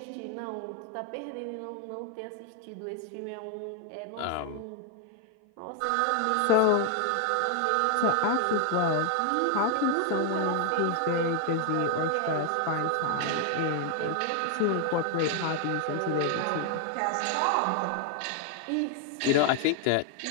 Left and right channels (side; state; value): both; different; correlation 0.00